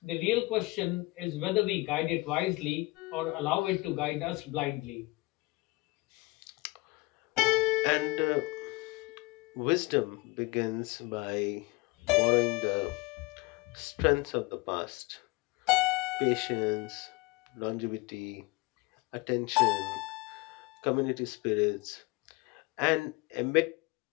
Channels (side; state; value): right; quieter; 23.7 dB